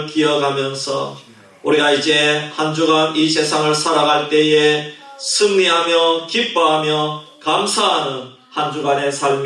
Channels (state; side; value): identical; both; correlation 1.00